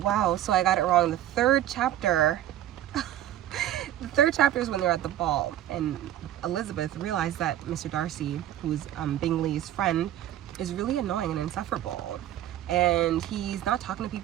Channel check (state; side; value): quieter; left; 12.4 dB